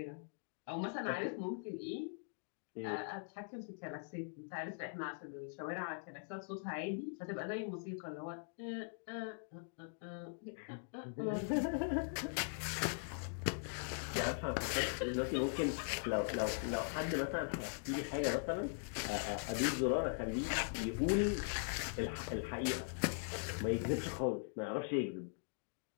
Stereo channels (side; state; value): right; silent; digital silence